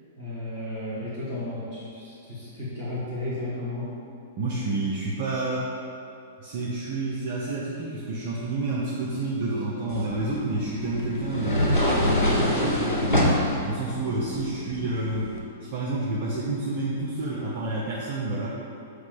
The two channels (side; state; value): both; inverted; correlation -0.34